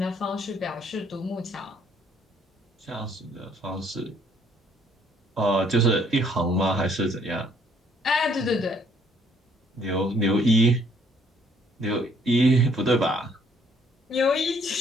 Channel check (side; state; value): both; normal; correlation 0.64